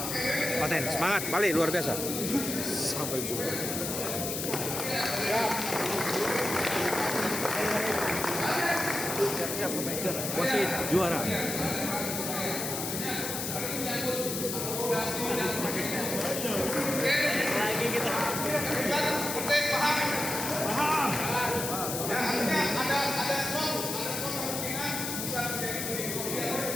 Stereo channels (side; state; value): left; noise; hiss, 3 dB below the sound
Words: Paten, semangat, balik luar biasa. Sampai jumpa. Siap, wasit juara.